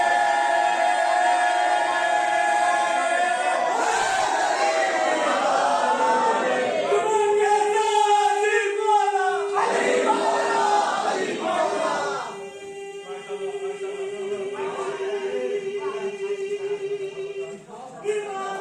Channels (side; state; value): both; identical; correlation 1.00